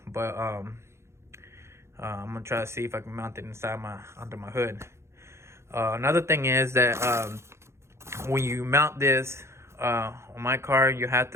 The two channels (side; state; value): left; late; 0.13 ms